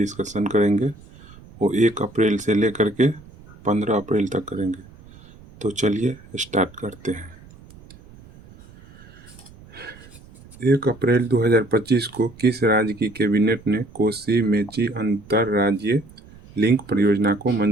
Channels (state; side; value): noise; right; rumble, 22 dB below the sound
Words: करेंगे वो 1 अप्रैल से लेकर के 15 अप्रैल तक करेंगे। तो चलिए स्टार्ट करते हैं। 1 अप्रैल 2025 को किस राज्य की कैबिनेट ने कोसी मेची अंतरराज्यीय लिंक परियोजना को